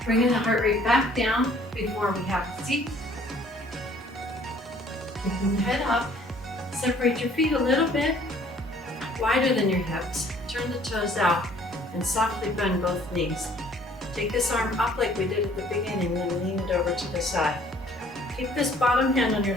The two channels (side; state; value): both; normal; correlation 0.58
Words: Bringing the heart rate back down before we have a seat. Keeping the head up. Separate your feet a little bit wider than your hips. Turn the toes out and softly bend both knees. Take this arm up like we did at the beginning, then lean it over to the side. Keep this bottom hand on your